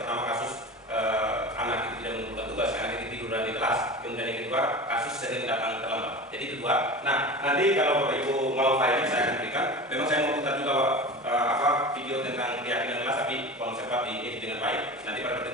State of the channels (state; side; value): normal; both; correlation 0.32